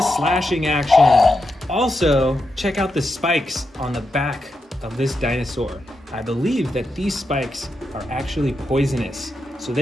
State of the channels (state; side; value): normal; both; correlation 0.86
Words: slashing action. Also, check out the spikes on the back of this dinosaur. I believe that these spikes are actually poisonous, so